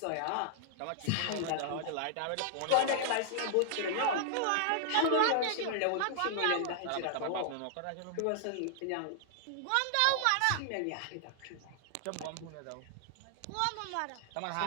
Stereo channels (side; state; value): both; different; correlation -0.01